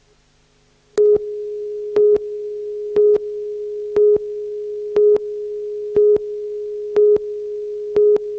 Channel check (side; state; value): both; identical; correlation 1.00